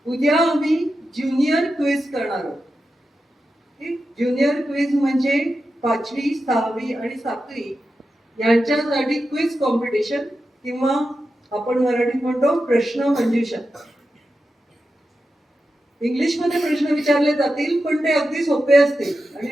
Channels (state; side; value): normal; both; correlation 0.90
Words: उद्या आम्ही ज्युनियर क्विज करणार आहोत. ज्युनियर क्विज म्हणजे 5वी, 6वी आणि 7वी यांच्यासाठी क्विज कॉम्पिटिशन, किंवा आपण मराठीत म्हणतो प्रश्न मंजुषा. इंग्लिश मध्ये प्रश्न विचारले जातील, पण ते अगदी सोपे असतील आणि